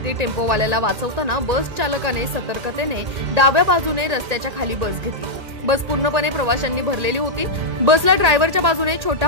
टेम्पोवाल्याला वाचवताना बस चालकाने सतर्कतेने डाव्या बाजूने रस्त्याच्या खाली बस घेतली। बस पूर्णपणे प्रवाशांनी भरलेली होती। बसला ड्रायव्हरच्या बाजूने छोटा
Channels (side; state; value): left; late; 1.9 ms